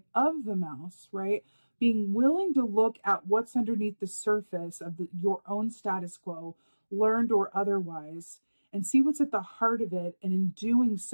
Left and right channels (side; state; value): both; inverted; correlation -1.00